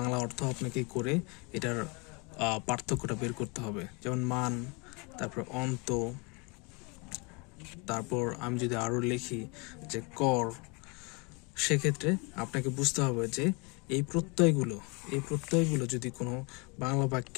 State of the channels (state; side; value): quieter; right; 30.0 dB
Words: অর্থ আপনাকে করে এটার পার্থক্যটা বের করতে হবে। যেমন মান, তারপর অন্ত, তারপর আমি যদি আরো লিখি যে কর, সেক্ষেত্রে আপনাকে বুঝতে হবে যে এই প্রত্যয়গুলো যদি কোনো বাংলা